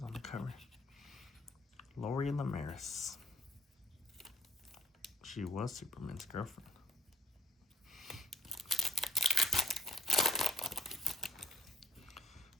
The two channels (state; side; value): normal; both; correlation 0.59